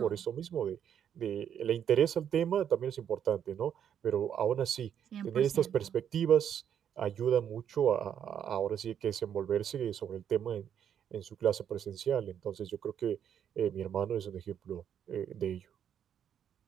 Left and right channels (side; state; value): left; quieter; 9.0 dB